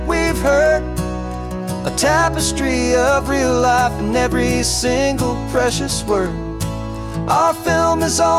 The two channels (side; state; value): both; identical; correlation 1.00